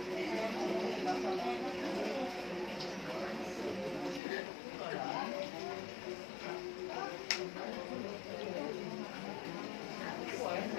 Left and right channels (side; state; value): right; drops out; at 4.2 s